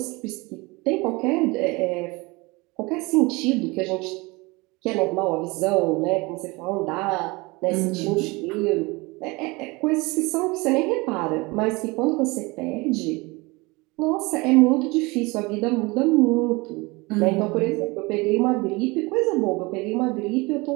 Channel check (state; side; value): quieter; left; 24.6 dB